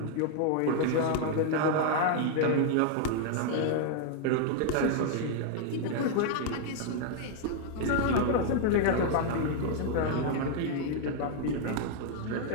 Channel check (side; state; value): both; different; correlation 0.00